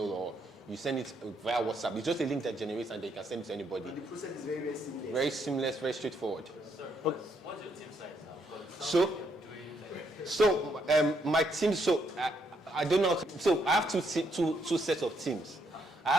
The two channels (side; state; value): both; normal; correlation 0.75